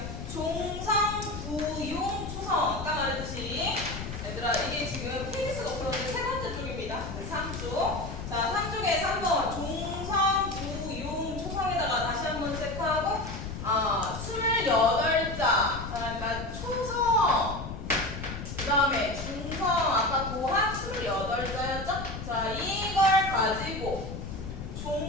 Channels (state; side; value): noise; left; rumble, 8 dB below the sound